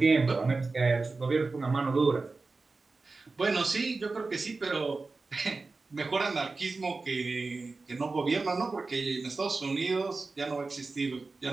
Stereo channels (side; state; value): left; quieter; 3.8 dB